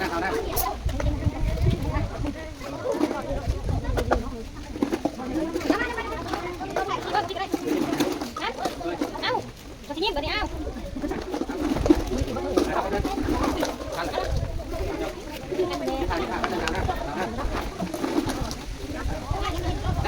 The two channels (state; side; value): identical; both; correlation 1.00